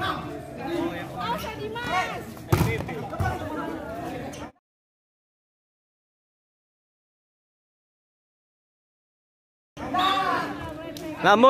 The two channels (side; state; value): both; identical; correlation 1.00